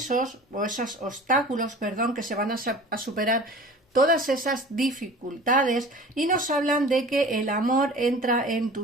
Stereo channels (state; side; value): normal; both; correlation 0.41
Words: o esos obstáculos, que se van a superar todas esas dificultades y nos hablan de que el amor entra en